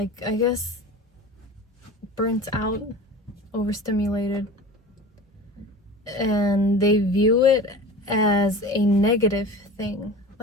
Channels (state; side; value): normal; both; correlation 0.36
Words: I guess, burnt out, overstimulated, and they view it as a negative thing.